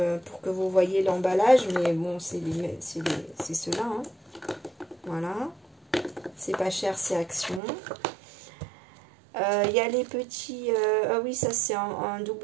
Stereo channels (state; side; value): drops out; left; at 7.6 s